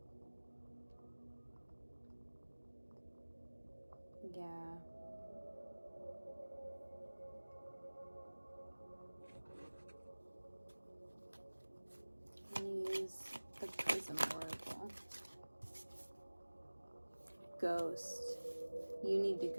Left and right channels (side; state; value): both; inverted; correlation -1.00